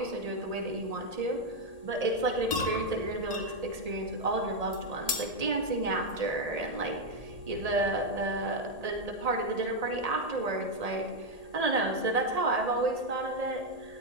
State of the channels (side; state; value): left; late; 1.8 ms